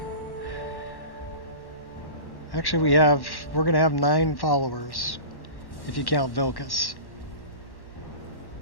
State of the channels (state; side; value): late; right; 1.1 ms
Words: Actually, we're going to have 9 followers if you count Vilkas.